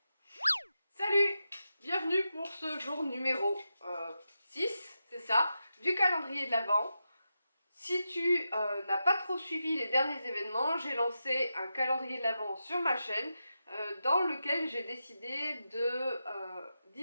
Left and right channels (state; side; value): inverted; both; correlation -0.88